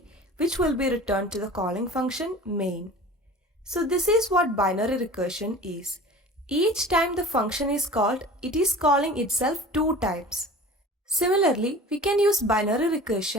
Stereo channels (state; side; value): normal; both; correlation 0.40